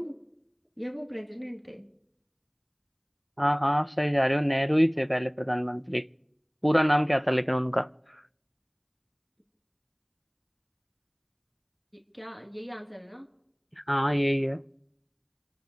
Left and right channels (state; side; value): identical; both; correlation 1.00